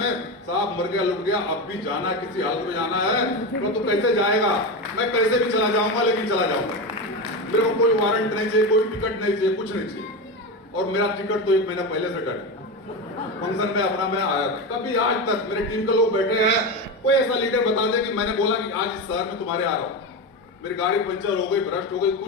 साहब मर गया लुट गया, अब भी जाना, किसी हालत में जाना है तो तू कैसे जाएगा, मैं कैसे भी चला जाऊंगा लेकिन चला जाऊंगा। मेरे को कोई वारंट नहीं चाहिए, कोई टिकट नहीं चाहिए, कुछ नहीं चाहिए। और मेरा टिकट तो 1 महीना पहले से कट, फंक्शन में अपना मैं आया था। कभी आज तक मेरे टीम के लोग बैठे हैं, कोई ऐसा लीडर बता दे कि मैंने बोला कि आज इस शहर में तुम्हारे आ रहा हूं, मेरी गाड़ी पंचर हो गई, भ्रष्ट हो गई,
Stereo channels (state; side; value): normal; both; correlation 0.18